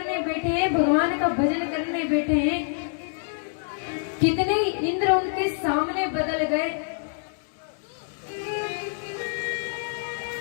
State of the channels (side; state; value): right; silent; 61 dB below the other